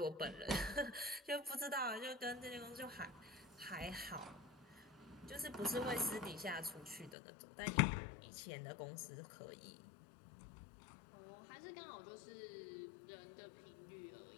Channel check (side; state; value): right; drops out; at 7.2 s